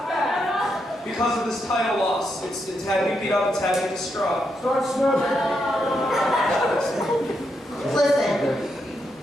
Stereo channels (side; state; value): both; normal; correlation 0.82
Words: because of this title loss. It's had me beat up, it's had me distraught. Start smoking. Listen,